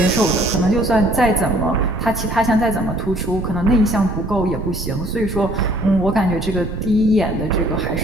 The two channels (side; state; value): both; normal; correlation 0.58